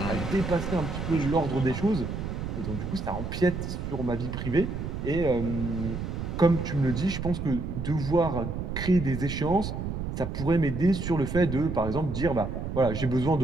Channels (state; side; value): noise; right; rumble, 5 dB below the sound